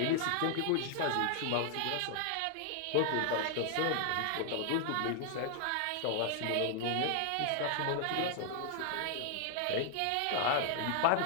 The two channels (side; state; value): both; different; correlation 0.00